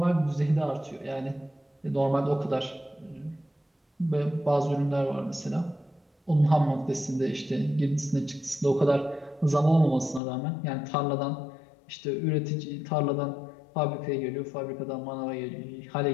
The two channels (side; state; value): right; drops out; at 10.2 s